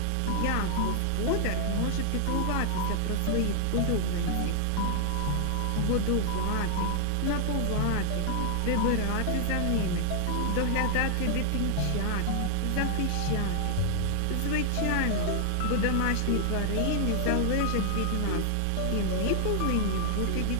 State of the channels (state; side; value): different; both; correlation 0.00